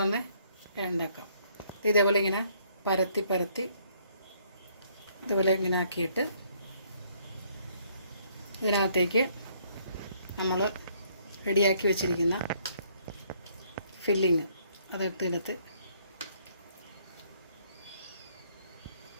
ഉണ്ടാക്കാം. ഇതേപോലെ ഇങ്ങനെ പരത്തി പരത്തി ഇതുപോലെ ഇങ്ങനെ ആക്കിയിട്ട് ഇതിനകത്തേക്ക് നമ്മൾ റെഡിയാക്കി വെച്ചിരിക്കുന്ന ഫില്ലിങ് അതെടുത്ത്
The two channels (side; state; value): both; inverted; correlation -0.66